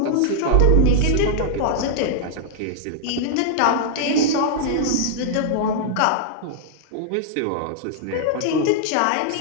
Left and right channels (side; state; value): both; different; correlation -0.01